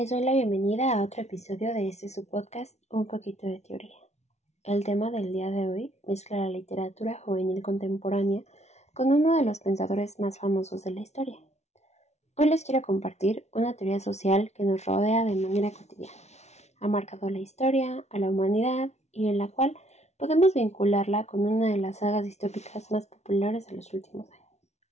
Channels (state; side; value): late; right; 0.32 ms